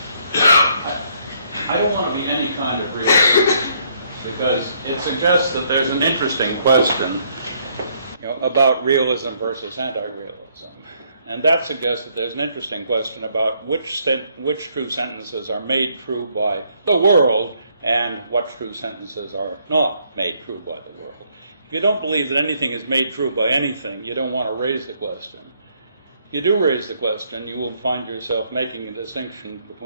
I don't want to be any kind of realist, because it suggests that there's an interesting question, about realism versus anti-realism. And that suggests that there's an interesting question about which true sentences are made true by the world and what true sentences are not made true by the world. If you don't believe that anything is made true by anything, you don't want to raise the question. If you do raise the question, you will find yourself making a distinction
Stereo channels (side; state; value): both; inverted; correlation -0.69